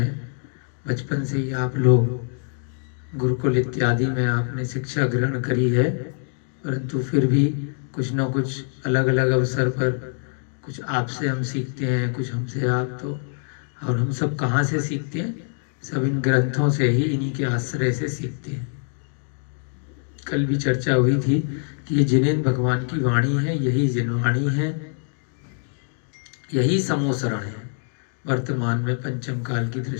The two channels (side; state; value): right; silent; digital silence